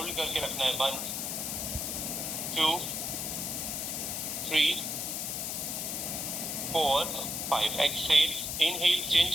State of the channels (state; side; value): noise; left; hiss, 2 dB below the sound